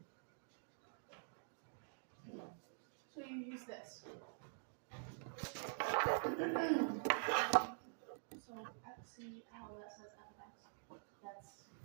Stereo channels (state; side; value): silent; left; digital silence